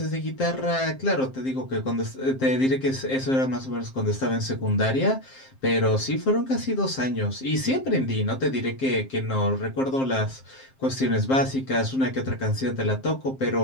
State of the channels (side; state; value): right; late; 7.6 ms